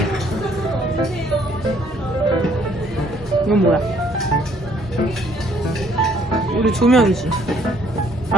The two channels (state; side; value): normal; both; correlation 0.63